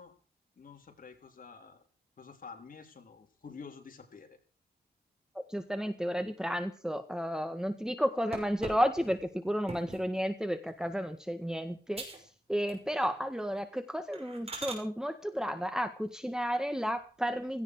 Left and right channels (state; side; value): normal; both; correlation 0.93